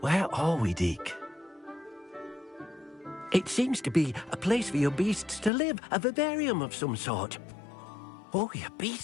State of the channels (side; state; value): right; drops out; at 5.5 s